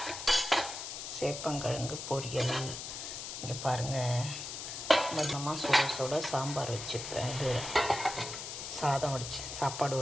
சேப்பங்கிழங்கு பொரியல். இங்கே பாருங்கள், மொத்தமாக சுட சுட சாம்பார் வச்சுப்பேன். இது சாதம் சாப்பாடு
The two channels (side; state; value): left; noise; hiss, 7 dB below the sound